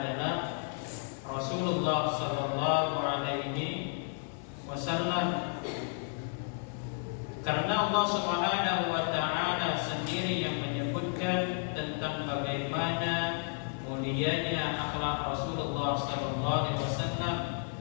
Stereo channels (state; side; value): silent; right; 56 dB below the other